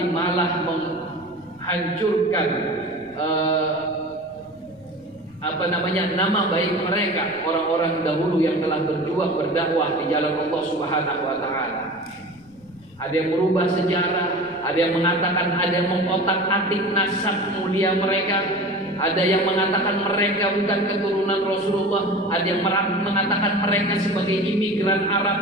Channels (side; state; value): left; noise; rumble, 27 dB below the sound